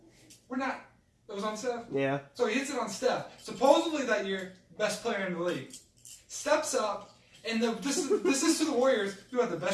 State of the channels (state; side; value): identical; both; correlation 1.00